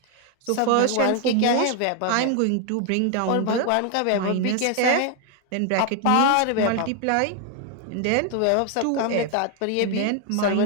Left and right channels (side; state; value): both; different; correlation 0.01